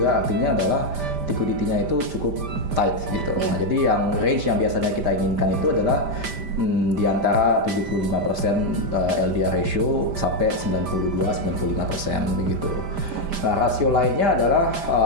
artinya adalah liquidity-nya itu cukup tight gitu. Nah, jadi yang range yang biasanya kita inginkan itu adalah di antara 75% LDR ratio sampai 92-95% begitu. Nah, rasio lainnya adalah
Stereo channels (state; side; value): late; left; 5.0 ms